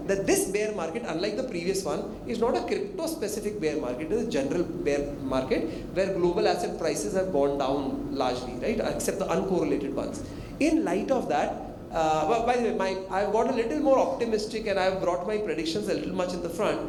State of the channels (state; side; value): identical; both; correlation 1.00